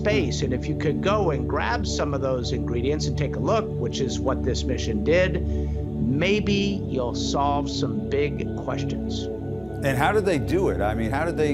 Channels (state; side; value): noise; right; hum, 25 dB below the sound